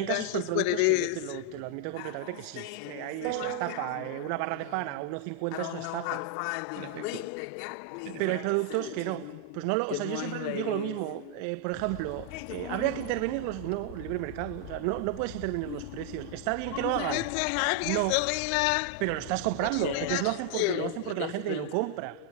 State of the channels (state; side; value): different; both; correlation 0.00